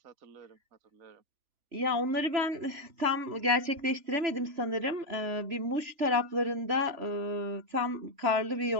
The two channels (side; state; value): left; late; 3.4 ms